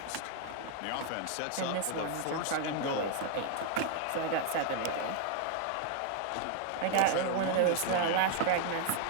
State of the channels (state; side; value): different; both; correlation 0.00